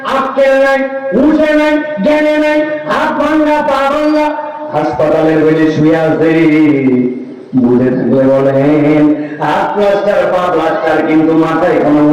আক্কেল নাই, হুঁশে নাই, জ্ঞানে নাই, হাত ভাঙ্গা পা ভাঙ্গা হাসপাতালের বেডে শুয়ে আছে। বুঝে থাকলে বলেন হাত প্লাস্টার পা প্লাস্টার, কিন্তু মাথায় কোনো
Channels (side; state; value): both; identical; correlation 1.00